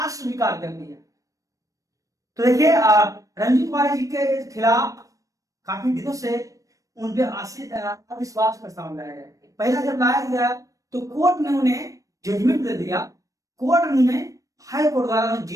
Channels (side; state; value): left; late; 0.16 ms